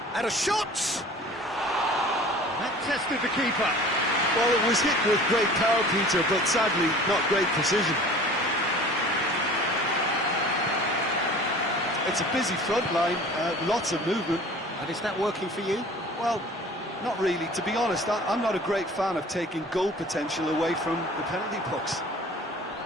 And a shot! That tested the keeper. Well, it was hit with great power, Peter, but sadly not great precision. It's a busy front line, lots of movement. And is that working for you? Well, not really. To be honest, I'm not a great fan of taking goal potential away from the penalty box.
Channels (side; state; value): both; normal; correlation 0.44